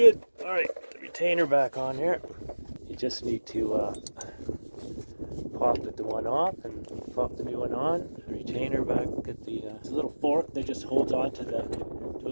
All right, the retainer back on here. You just need to pop the one off and pop the new one on. The retainer back at the little fork that just holds on to a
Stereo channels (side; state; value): both; inverted; correlation -1.00